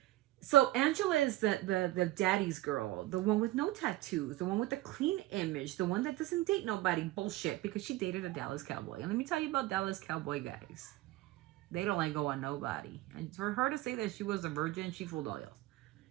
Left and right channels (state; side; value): quieter; left; 17.1 dB